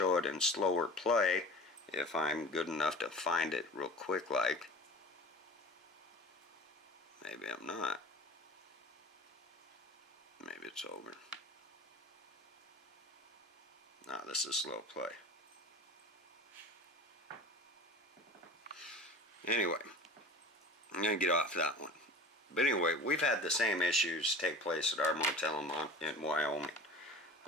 it in slower play, if I'm good enough to find it real quick like. Maybe I'm not. Maybe it's over. No, this is slow play. Anyway, I'm going to get off that one. But anyway, we've had the same issues take place at our motel in Wyoming,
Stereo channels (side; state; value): both; normal; correlation 0.38